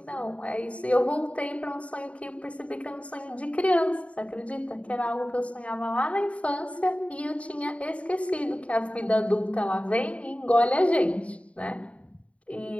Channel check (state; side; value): late; right; 0.064 ms